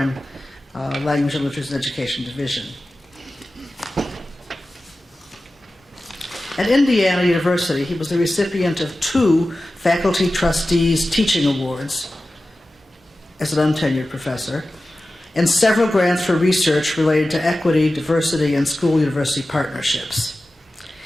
Language and Literacy and Education Division. At Indiana University, he was the recipient of 2 Faculty Trustees Teaching Awards as an untenured professor, and several grants for research related to equity, diversity, and school-university partnerships.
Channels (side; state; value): both; normal; correlation 0.95